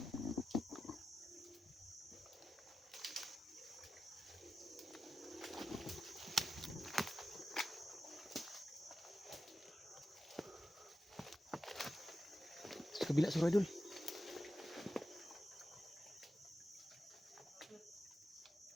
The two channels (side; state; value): both; normal; correlation 0.91